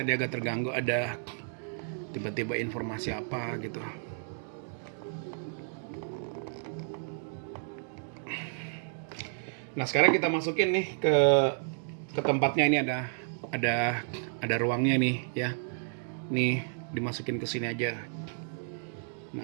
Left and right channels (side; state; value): left; silent; digital silence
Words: agak terganggu, ada tiba-tiba informasi apa gitu. Nah sekarang kita masukin nih ke tempatnya, ini ada ruangnya nih ya. Nih dimasukin ke sini aja.